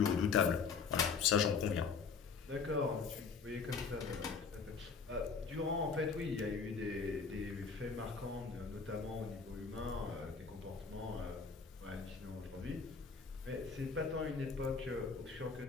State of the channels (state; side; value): quieter; right; 5.3 dB